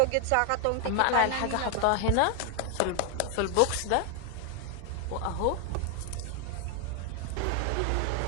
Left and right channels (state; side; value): different; both; correlation 0.00